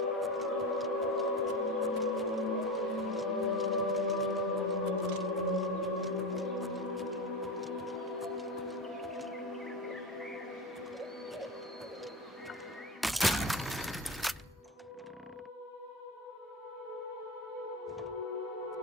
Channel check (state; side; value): normal; both; correlation 0.21